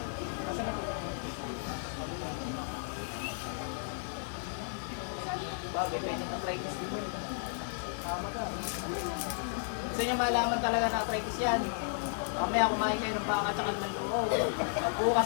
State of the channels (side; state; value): right; silent; digital silence